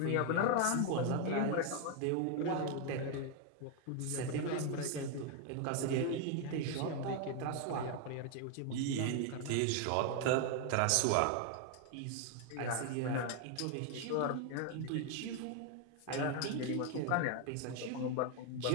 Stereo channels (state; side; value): different; both; correlation 0.01